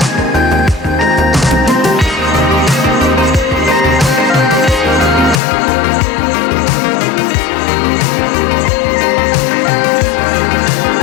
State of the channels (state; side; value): drops out; right; at 5.4 s